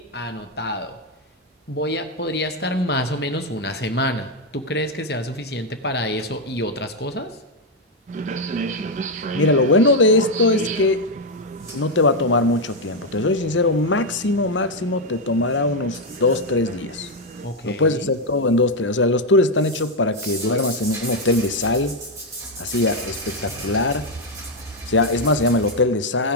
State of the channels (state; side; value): normal; both; correlation 0.03